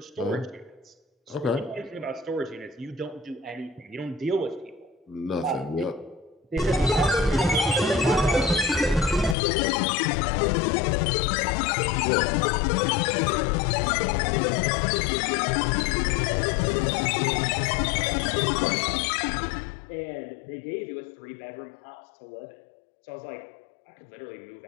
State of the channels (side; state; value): right; drops out; at 9.3 s